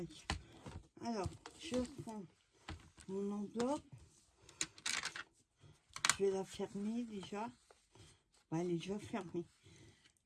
Alors, je prends mon enveloppe. Je vais la fermer déjà. Bah, elle est déjà fermée.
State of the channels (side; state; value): both; identical; correlation 1.00